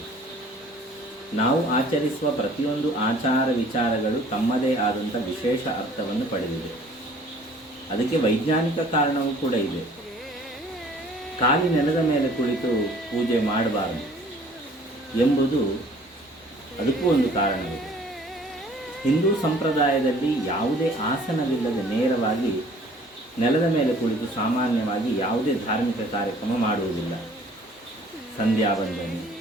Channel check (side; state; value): both; normal; correlation 0.53